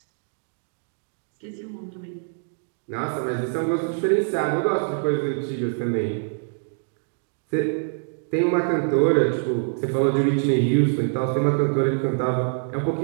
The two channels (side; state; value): left; silent; digital silence